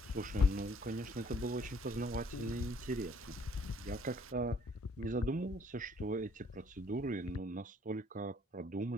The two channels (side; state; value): both; normal; correlation 0.62